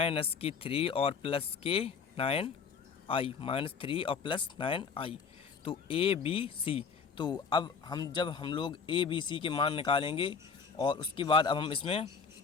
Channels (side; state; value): right; quieter; 5.8 dB